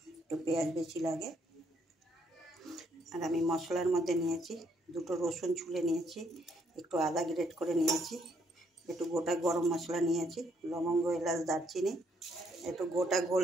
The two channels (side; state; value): both; normal; correlation 0.70